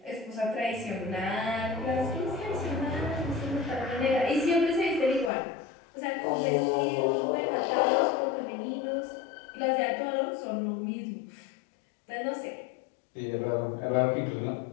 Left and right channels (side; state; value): right; drops out; at 5.3 s